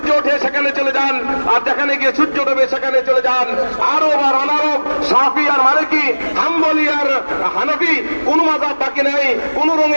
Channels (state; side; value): inverted; both; correlation -1.00